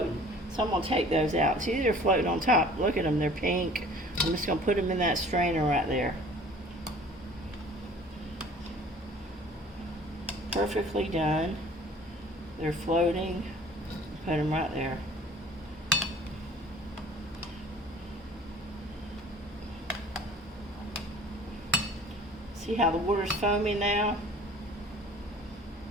So I'm gonna take those out. See, they're floating on top. Look at them, they're pink. I'm just gonna put them in that strainer right there. Perfectly done. They're floating. Put them right there. See how the water's foaming now?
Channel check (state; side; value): normal; both; correlation 0.49